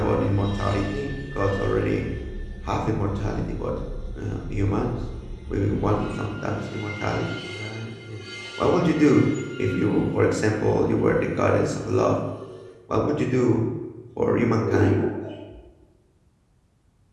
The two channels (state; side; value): identical; both; correlation 1.00